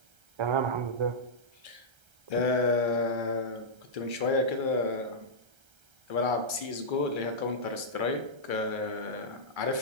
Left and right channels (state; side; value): late; left; 1.3 ms